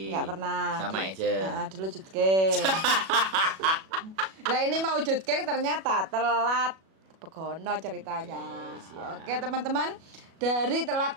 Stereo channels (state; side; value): late; left; 37 ms